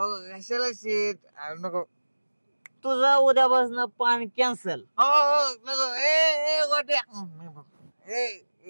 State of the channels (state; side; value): inverted; both; correlation -1.00